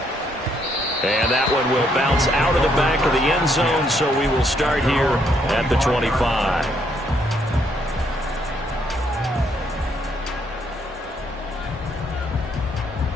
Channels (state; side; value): normal; both; correlation 0.72